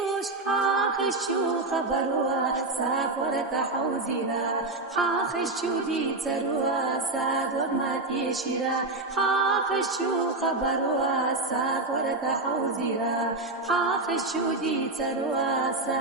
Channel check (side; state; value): left; quieter; 3.1 dB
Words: حاخشو خبروا سافر تحوزيرا حاخشو دي تروا سادور ماتي شيرا حاخشو خبروا سافر تحوزيرا حاخشو دي تروا